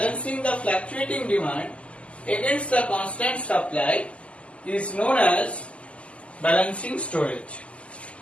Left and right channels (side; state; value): right; late; 0.059 ms